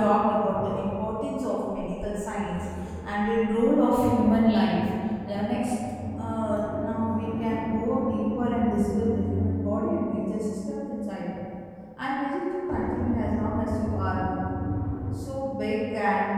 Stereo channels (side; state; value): both; identical; correlation 1.00